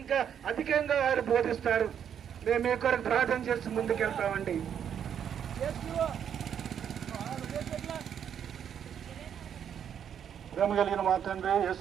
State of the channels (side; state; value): left; quieter; 8.6 dB